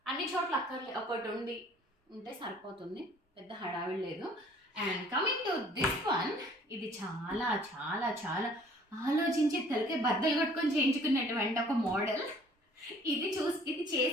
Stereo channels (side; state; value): both; normal; correlation 0.55